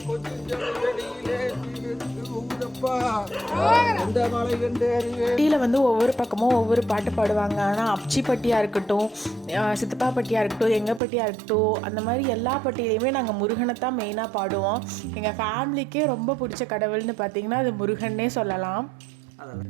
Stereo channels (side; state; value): left; drops out; at 11.0 s